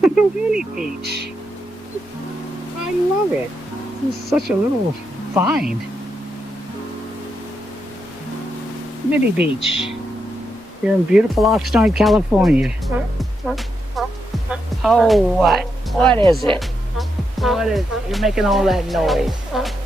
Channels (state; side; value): normal; both; correlation 0.83